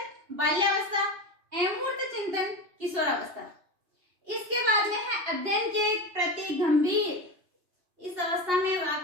बाल्यावस्था, अमूर्त चिंतन किशोरावस्था। इसके बाद में है अध्ययन के प्रति गंभीर। इस अवस्था में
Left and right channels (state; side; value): late; left; 2.8 ms